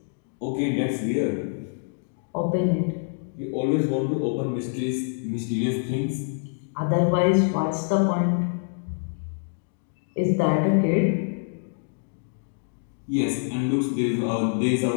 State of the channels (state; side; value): silent; right; 59 dB below the other